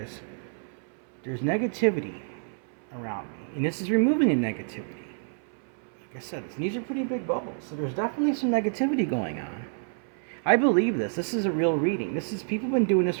There's negativity around me. And this is removing the negativity. Like I said, these are pretty big bubbles. So there's definitely some negativity going on. I believe this. This is a real reading. People have been doing this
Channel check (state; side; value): silent; left; 59 dB below the other